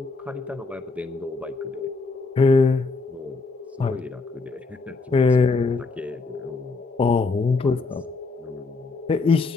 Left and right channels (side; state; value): right; quieter; 4.0 dB